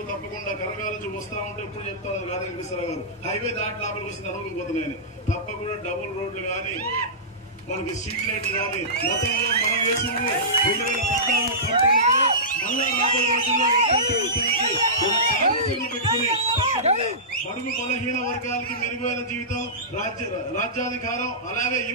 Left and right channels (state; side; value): normal; both; correlation -0.19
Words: తప్పకుండా కనకాల నుంచి వస్తా ఉంటే ఇప్పుడు చెప్తా ఉన్నారు గాంధీ వెంకటేశ్వరరావు గారు హైవే దాటి లోపలికి వస్తే నడవకపోతున్నాయని తప్పకుండా డబుల్ రోడ్లు కానీ మనకి స్ట్రీట్ లైట్లు కానీ గతంలో మనం వేసింది 2014-19 మళ్ళా రాబోయే రోజుల్లో పెట్టుకుని బడుగు బలహీన వర్గాలకి మెరుగైన జీవితం, రాజ్యాధికారం, అలాగే